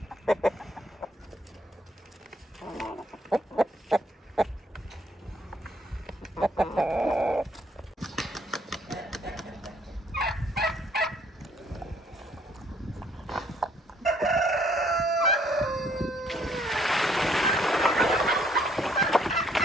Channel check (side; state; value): both; normal; correlation 0.65